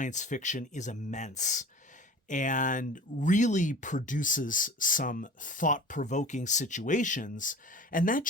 fiction is immense and really produces some thought-provoking situations, and that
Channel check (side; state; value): both; normal; correlation 0.39